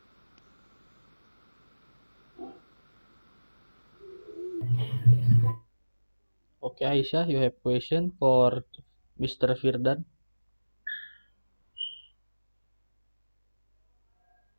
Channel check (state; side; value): inverted; both; correlation -1.00